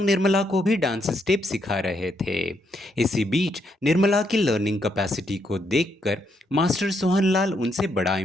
निर्मला को भी डांस स्टेप सिखा रहे थे। इसी बीच निर्मला की लर्निंग कैपेसिटी को देखकर मास्टर सोहन लाल उनसे बड़ा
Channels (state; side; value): normal; both; correlation 0.76